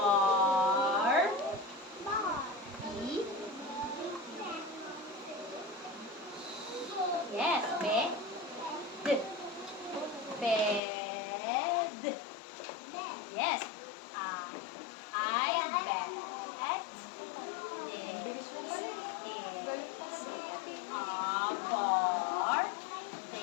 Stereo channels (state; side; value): drops out; right; at 10.8 s